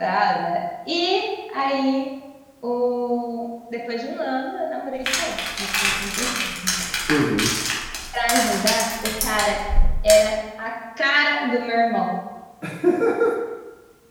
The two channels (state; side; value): identical; both; correlation 1.00